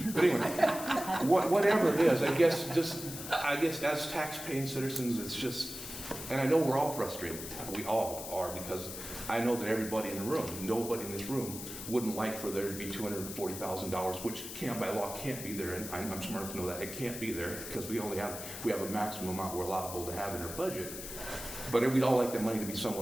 But anyway, whatever it is, I guess as tax-paying citizens, it's just, and I know we're all frustrated. We all are, because I know that everybody in the room, nobody in this room, wouldn't like for there to be $240,000, which by law can't be there, and I'm smart enough to know that it can't be there, because we have a maximum amount we're allowable to have in our budget. But we'd all like that money to be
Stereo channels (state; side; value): noise; left; hiss, 9 dB below the sound